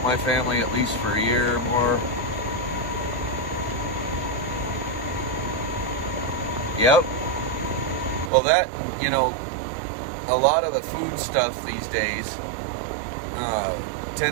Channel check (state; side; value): drops out; left; at 8.3 s